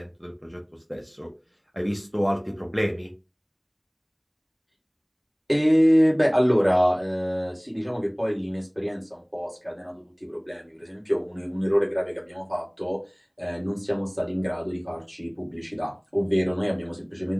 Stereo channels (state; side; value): identical; both; correlation 1.00